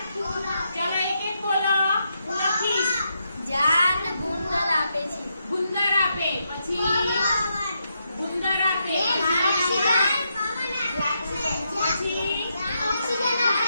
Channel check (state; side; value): inverted; both; correlation -0.82